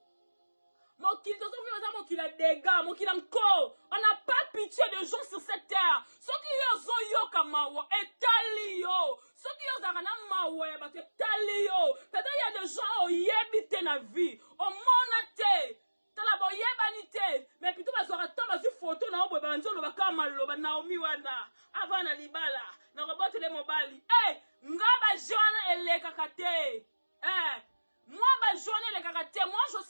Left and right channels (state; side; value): inverted; both; correlation -1.00